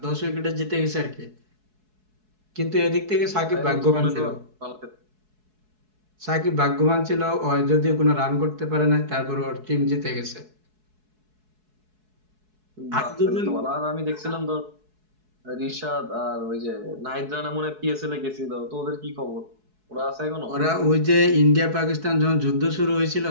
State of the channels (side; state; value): left; late; 4.7 ms